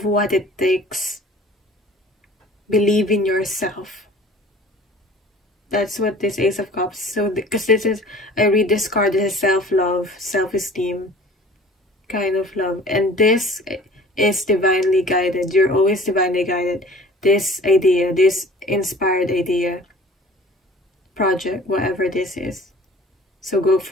what it takes. Believe in yourself. That's what this Ace of Cups. So, because this is, I read this card as self-love, self-esteem kind of love. And this is divinely guided. You're always divinely guided. This idea, this inspired idea, project, whatever this is. So go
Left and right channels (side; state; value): both; normal; correlation 0.46